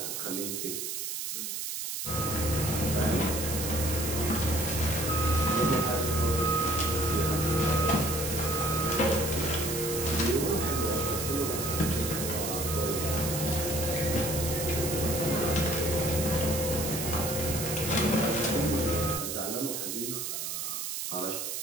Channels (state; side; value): noise; right; hiss, 4 dB below the sound